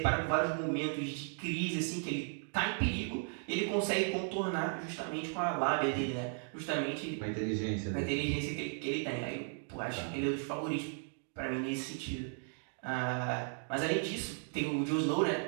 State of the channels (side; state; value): left; silent; 54 dB below the other